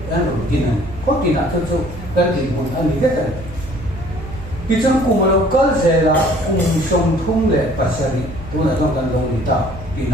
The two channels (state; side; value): noise; right; hum, 13 dB below the sound